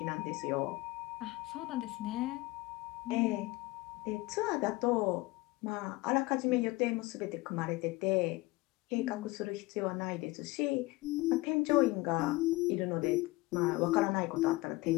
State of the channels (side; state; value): right; quieter; 20.9 dB